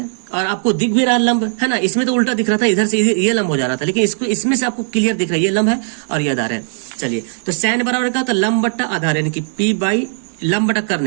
और आपको दिख भी रहा लंब, है ना। इसमें तो उल्टा दिख रहा था, इधर से ये लंब हो जा रहा था, लेकिन इसको इसमें से आपको क्लियर दिख रहा है ये लंब है और ये आधार है। चलिए तो सैन बराबर क्या होता है? लंब बट्टा आधार यानी कि पी बाई लंब बटा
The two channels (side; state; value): left; silent; digital silence